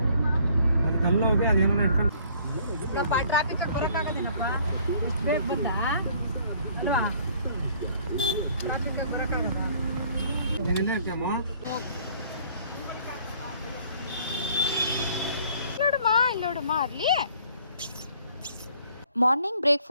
ಅದಕ್ಕೆ ಅಲ್ಲಿ ಹೋಗಿ ಅದೇನೋ ಇಟ್ಕೊಂಡು ಇಲ್ಲಪ್ಪ, ಟ್ರಾಫಿಕ್ ಬರೋಕ್ಕಾಗೋದೇನಪ್ಪ, ಇಷ್ಟು ಬೇಗ ಬಂದ ಅಲ್ವಾ? ಟ್ರಾಫಿಕ್ ಬರೋಕ್ಕಾಗಲ್ಲ. ನೋಡಮ್ಮ, ಇಲ್ಲಿ ನೋಡಮ್ಮ. ಅಲ್ಲಿ ಮಾರ್ನಿಂಗ್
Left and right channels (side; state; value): both; inverted; correlation -0.58